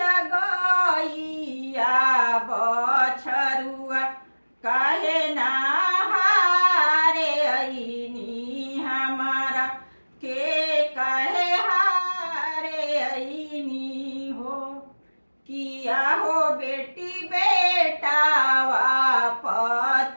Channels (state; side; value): inverted; both; correlation -1.00